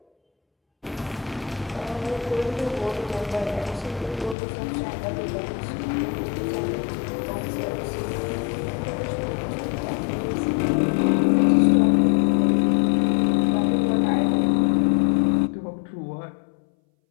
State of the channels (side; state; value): right; drops out; at 4.4 s